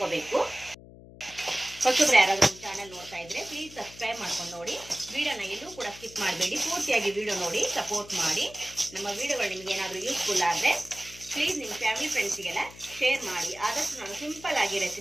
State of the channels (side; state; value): left; noise; hum, 19 dB below the sound